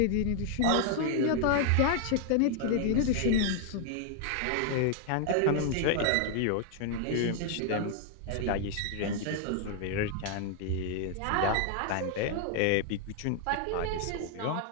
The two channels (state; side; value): different; both; correlation 0.00